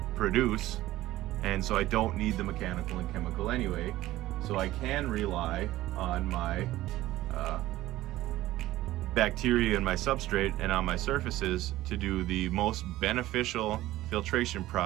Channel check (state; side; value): quieter; left; 15.9 dB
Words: produce, and so I don't need the mechanical and chemical anyway. So I can rely on my bacteria in my substrate and on my surfaces to do the most beneficial filtration